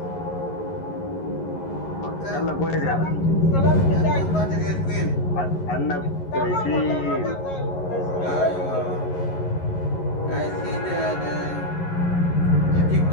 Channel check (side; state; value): right; late; 11 ms